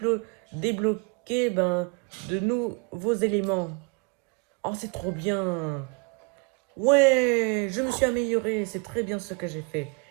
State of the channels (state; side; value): quieter; left; 31.5 dB